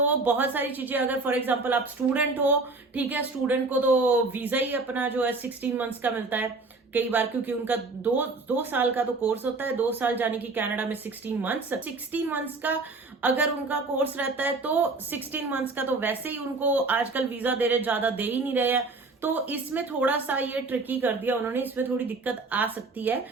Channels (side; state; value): left; quieter; 3.6 dB